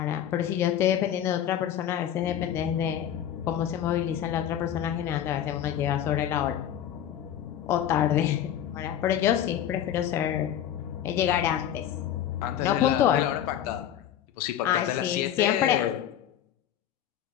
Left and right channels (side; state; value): right; quieter; 10.5 dB